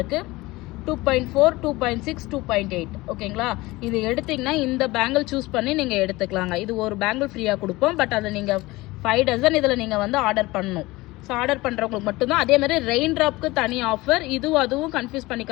2.4, 2.6, 2.8. ஓகேங்களா? இது எடுத்திங்கன்னா இந்த பேங்கிள் சூஸ் பண்ணி நீங்கள் எடுத்துக்கலாங்க. இது ஒரு பேங்கிள் ஃப்ரீயாக கொடுப்போம். பட் அதை நீங்கள் 5 டசன் இதில் நீங்கள் வந்து ஆர்டர் பண்ணணும். ஸோ ஆர்டர் பண்ணுறவங்களுக்கு மட்டும்தான். அதே மாதிரி ரெயின் ட்ராப்க்கு தனி ஆஃபர். அதுவும் கன்ஃபியூஸ்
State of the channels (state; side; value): quieter; right; 20.5 dB